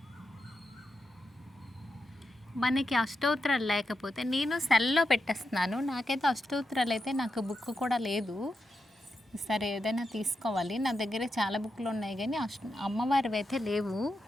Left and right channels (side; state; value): both; normal; correlation 0.87